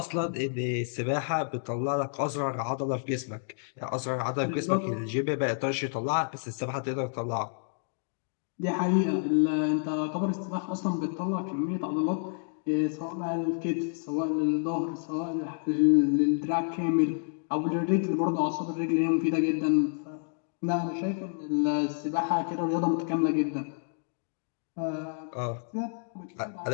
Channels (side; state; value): right; silent; digital silence